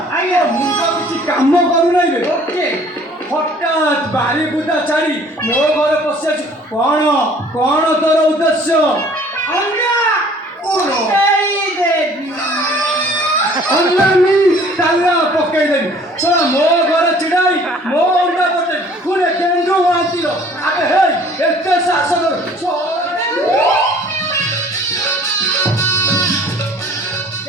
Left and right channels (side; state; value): both; normal; correlation 0.53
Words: ଆଜ୍ଞା ମୁଁ ତ କିଛି କାମ କରୁନାହିଁ ବେ। ଓକେ ହଠାତ୍ ବାରି ବୁଦା ଛାଡ଼ି ମୋ ଘରେ ପଶି ଆଛୁ। କଣ କଣ ତୋର ଉଦ୍ଦେଶ୍ୟ? ଅଣ୍ଡା ଫୁଟେଇ ଦେବି। ଅଣ୍ଡାନି ତାଲା ପକେଇଦେବି। ଶୁଣ ମୋ ଘରେ ଛିଡ଼ାଇ ମୋ ଅଣ୍ଡା ପକେଇ ପୁଣି କେନ୍ଦୁ ମହାନ୍ତିର ଆବେ ହେଇ ଏତେ ସାହସ